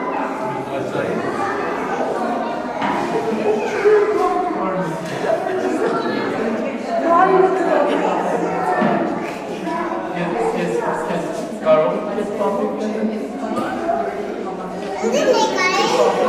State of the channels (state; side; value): identical; both; correlation 1.00